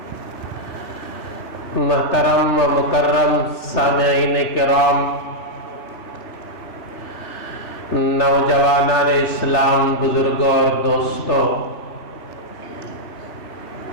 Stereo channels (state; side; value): late; right; 3.4 ms